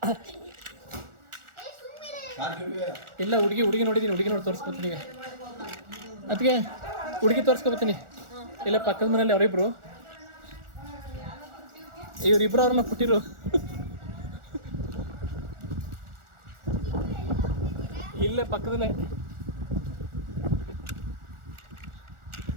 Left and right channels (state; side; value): late; left; 1.4 ms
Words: ಇಲ್ಲ, ಹುಡುಗಿ ನೋಡಿದ್ದೀನಿ. ಹುಡುಗಿ ನೋಡಿ ತೋರಿಸ್ಕೊತೀನಿ ಈಗ. ಅದಕ್ಕೆ ಹುಡುಗಿ ತೋರಿಸ್ಕೊಬತ್ತೀನಿ. ಇಲ್ಲ, ಪಕ್ಕದ ಮನೇಲಿ ಅವರಿಬ್ರು, ಇವರಿಬ್ರು ಅವ್ರನ್ನ ಪುಟ್ಟಿರು. ಇಲ್ಲೇ ಪಕ್ಕದಲ್ಲೇ.